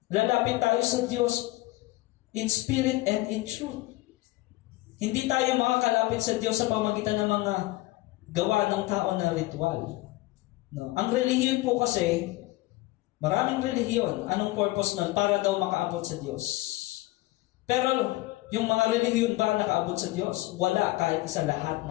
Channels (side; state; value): right; quieter; 19.5 dB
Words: Lalapit tayo sa Diyos in spirit and in truth. Hindi tayo makakalapit sa Diyos sa pamagitan ng mga gawa ng tao na ritual. No? Ang relihiyon po kasi, maraming relihiyon. Anong purpose nun? Para daw makaabot sa Diyos. Pero yung mga relihiyon ba nakaabot sa Diyos? Wala, kahit sa lahat